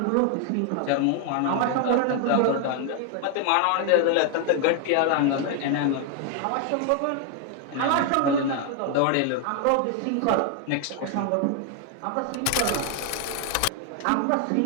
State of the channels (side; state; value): both; different; correlation 0.00